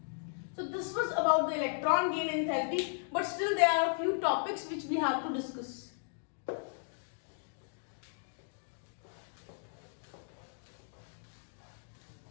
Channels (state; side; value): silent; right; digital silence